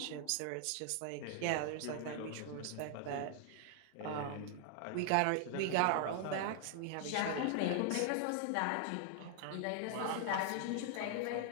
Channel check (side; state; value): both; different; correlation 0.00